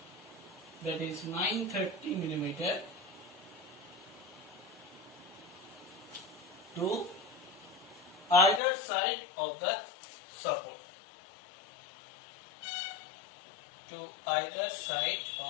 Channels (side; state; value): right; drops out; at 8.6 s